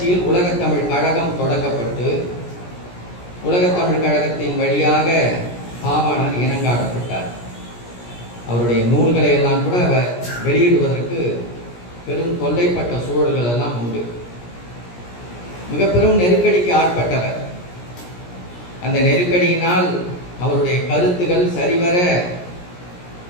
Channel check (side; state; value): right; late; 17 ms